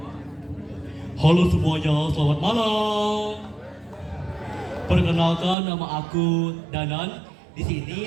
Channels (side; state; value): left; drops out; at 5.6 s